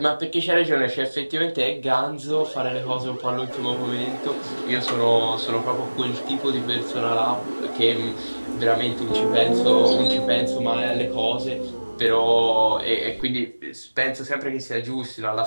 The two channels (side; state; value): both; inverted; correlation -1.00